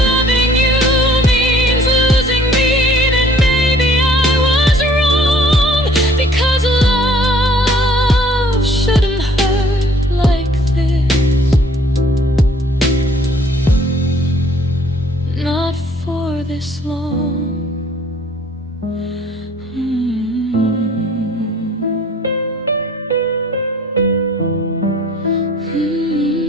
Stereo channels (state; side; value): normal; both; correlation 0.56